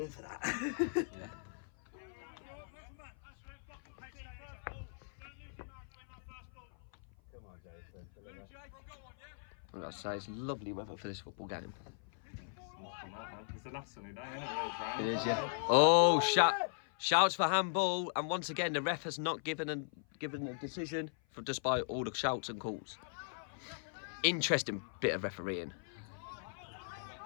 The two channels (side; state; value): right; silent; 52 dB below the other